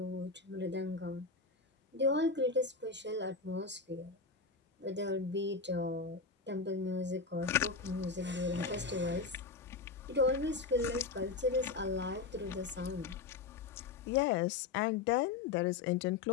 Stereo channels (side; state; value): right; quieter; 4.5 dB